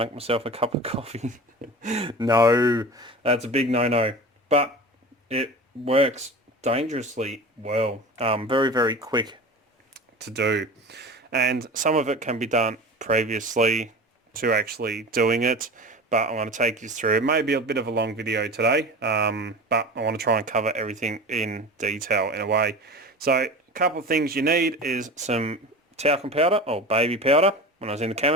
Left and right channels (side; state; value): both; normal; correlation 0.34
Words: myself a cup of coffee. No, that's a big no-no. But it works dangerously well. Very quick to do. And some of it can be done previously to actually doing it, but I'm going to take you through. It may be a bit of a long video today, but I want to try and cover everything in detail in a way. So a couple of things you need is some talcum powder or baby powder. When I was in the